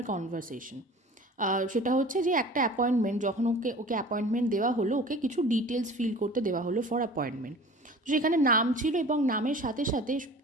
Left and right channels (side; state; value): both; normal; correlation 0.42